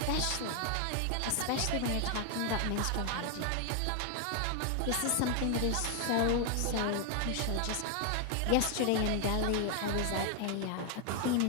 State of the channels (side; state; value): both; different; correlation 0.00